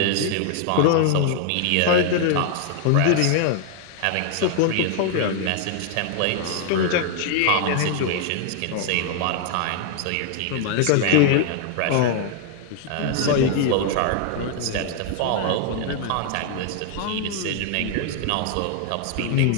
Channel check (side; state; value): both; different; correlation 0.00